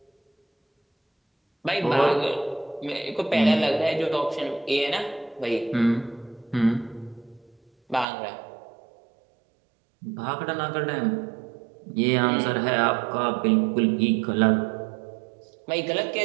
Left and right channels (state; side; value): drops out; left; at 8.1 s